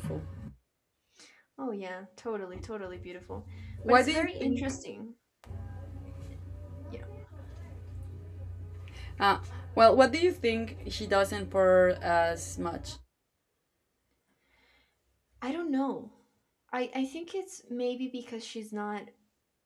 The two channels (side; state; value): both; identical; correlation 1.00